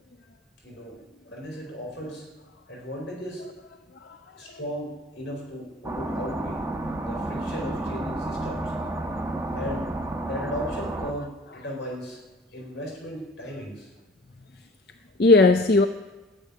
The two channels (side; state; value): both; normal; correlation 0.47